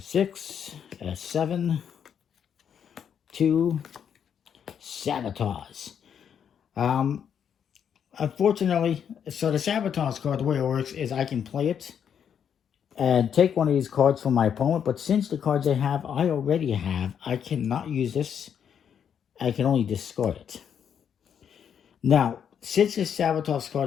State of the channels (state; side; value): quieter; right; 8.2 dB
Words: 6. That's 7. 2. Sabotage. Unfortunately, so the Sabotage card, the way it works is I can play it and take one of these cards from my opponent. But since the cards I already have, I cannot use this. I can only discard it. Now, since this Sabotage